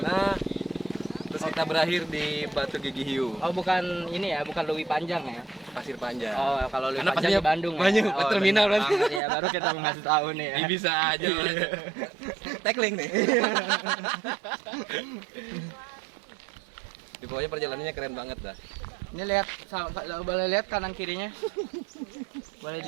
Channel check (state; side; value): drops out; left; at 9.2 s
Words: Terus kita berakhir di Batu Gigi Hiu, Oh, bukan ini ya, bukan Lewi Panjang ya. Pasir Panjang. Oh, kalau Lewi Karena Panjang di pastinya Bandung. banyak, ya. terminal bener berarti. banget ya, baru kita ngasih tahu nih ya. Ini bisa aja. Tackling nih. Di pokoknya perjalanannya keren banget dah. Ini lihat, boleh lihat kanan kirinya. Boleh